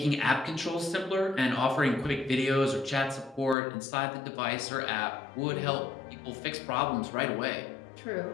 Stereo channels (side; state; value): right; drops out; at 3.6 s